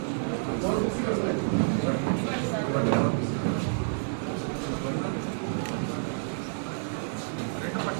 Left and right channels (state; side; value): silent; left; 59 dB below the other